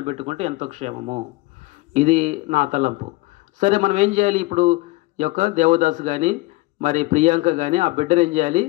పెట్టుకుంటే ఎంతో క్షేమము. ఇది నా తలంపు. సరే, మనం ఏం చేయాలి? ఇప్పుడు ఈ యొక్క దేవదాసు కానీ మరి ప్రియాంక కానీ ఆ బిడ్డను ఏం చేయాలి?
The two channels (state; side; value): quieter; right; 21.4 dB